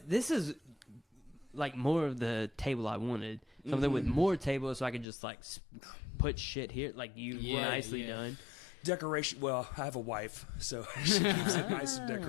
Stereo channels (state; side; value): drops out; right; at 5.1 s